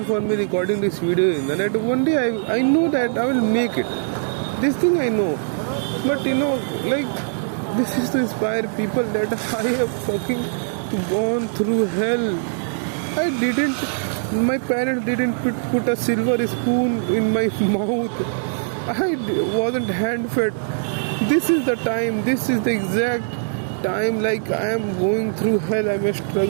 for me recording this video is that one day I know that I will make it. This thing I know, but like this is to inspire people that I have fucking gone through hell. I didn't. My parents didn't put a silver spoon in my mouth. Wasn't hand fed. This is the time. This is the exact time. Like I am going through hell. I am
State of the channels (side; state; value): left; silent; digital silence